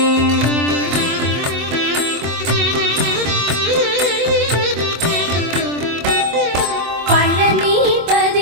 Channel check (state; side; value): late; left; 24 ms